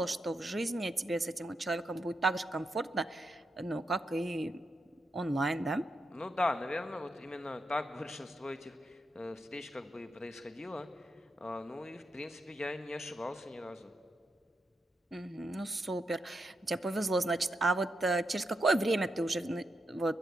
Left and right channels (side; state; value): both; normal; correlation 0.84